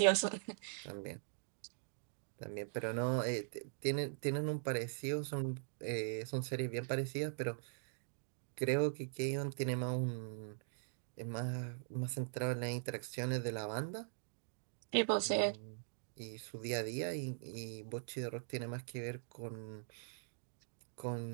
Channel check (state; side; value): silent; left; digital silence